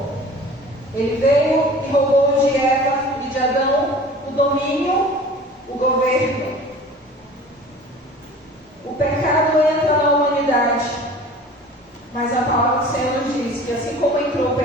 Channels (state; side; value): normal; both; correlation 0.43